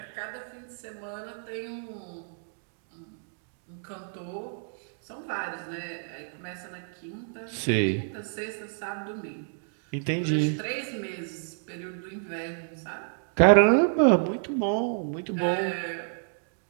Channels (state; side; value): silent; left; digital silence